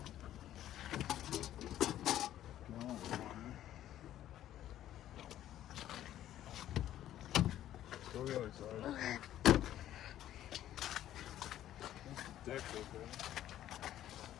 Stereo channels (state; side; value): quieter; right; 12.4 dB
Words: Go the other side. Okay. Deck's okay.